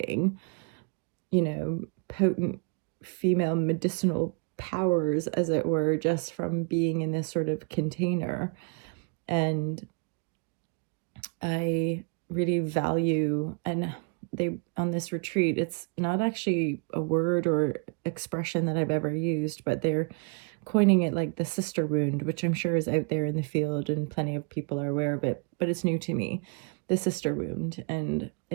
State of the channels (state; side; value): quieter; left; 34.6 dB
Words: potent female medicinal powers, as it were, just from being in this sort of container. And I really value, and on this retreat, it's not actually a word or expression that I've ever used, but they're coining it like the sister wound, which I'm sure is out there in the field and plenty of people are aware of it, but it's new to me, the sister wound. And